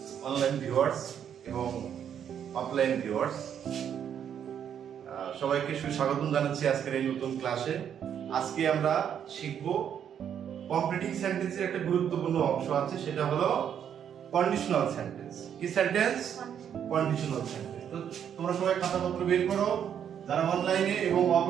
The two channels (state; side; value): quieter; left; 8.8 dB